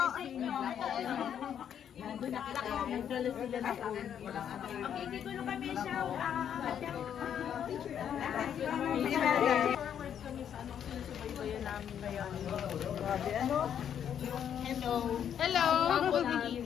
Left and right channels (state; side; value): quieter; right; 9.0 dB